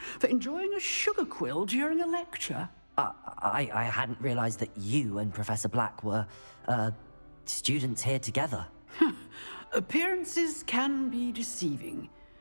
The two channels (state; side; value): inverted; both; correlation -1.00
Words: for enjoying a sugar quill during a lecture. I hadn't realized that you and Professor Black were, students here together. Appearances can be deceiving.